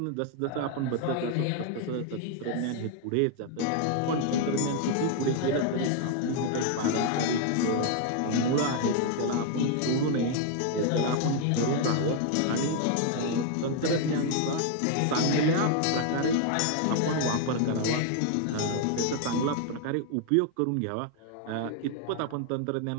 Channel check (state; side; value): different; both; correlation 0.00